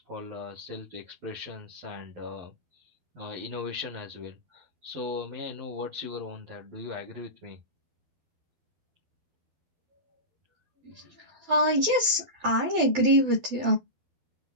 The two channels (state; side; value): late; left; 12 ms